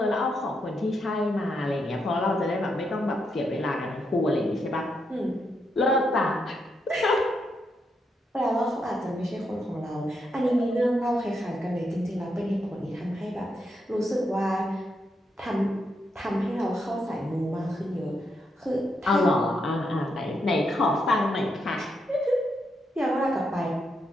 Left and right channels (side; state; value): both; normal; correlation 0.81